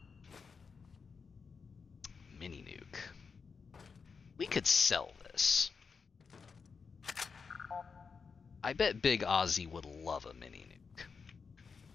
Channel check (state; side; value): quieter; right; 5.4 dB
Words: Mini nuke. We could sell this. I bet Big Ozzy would love a mini nuke.